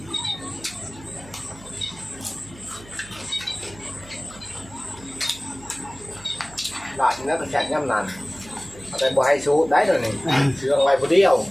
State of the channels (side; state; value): right; noise; hum, 20 dB below the sound